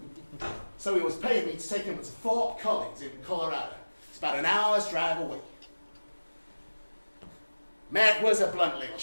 So he was paying me to take him to Fort Collins in Colorado. It's about an hour's drive away. Matt was a blunt little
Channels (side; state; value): both; inverted; correlation -1.00